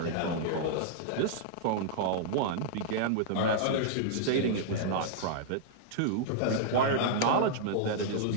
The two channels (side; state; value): both; different; correlation -0.02